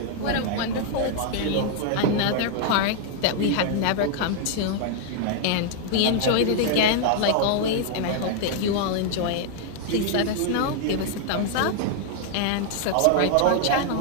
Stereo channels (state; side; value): different; both; correlation 0.00